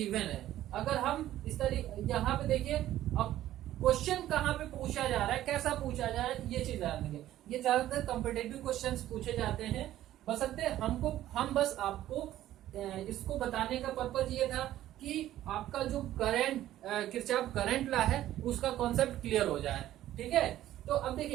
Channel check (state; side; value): quieter; left; 13.4 dB